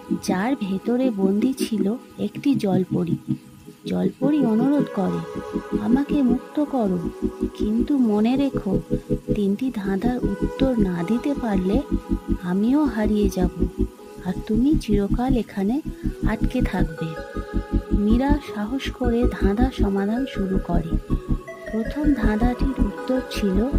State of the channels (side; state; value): both; identical; correlation 1.00